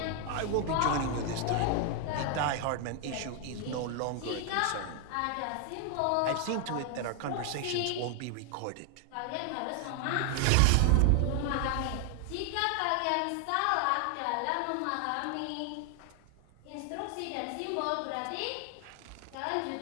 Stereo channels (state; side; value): different; both; correlation 0.00